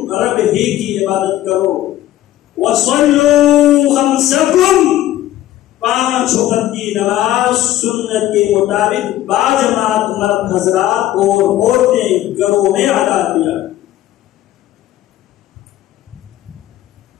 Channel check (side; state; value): right; quieter; 13.8 dB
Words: رب ہی کی عبادت کرو، وصلوا خمسکم، 5 وقت کی نماز سنت کے مطابق باجماعت مرد حضرات اور عورتیں گھروں میں ادا کیا،